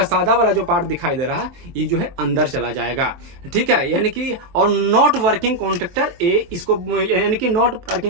सादा वाला जो पार्ट दिखाई दे रहा है ये जो है अंदर चला जाएगा। ठीक है, यानी कि और नॉट वर्किंग कॉन्टेक्टर ए, इसको यानी कि नॉट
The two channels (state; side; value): late; left; 23 ms